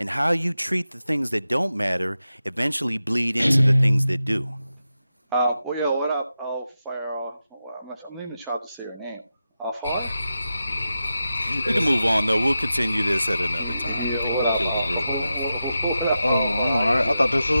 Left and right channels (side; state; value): both; inverted; correlation -0.91